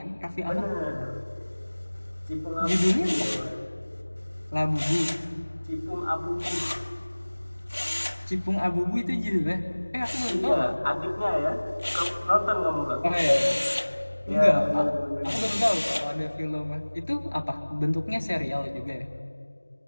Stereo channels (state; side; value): inverted; both; correlation -1.00